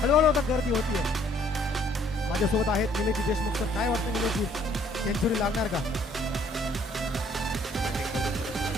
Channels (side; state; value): both; normal; correlation 0.62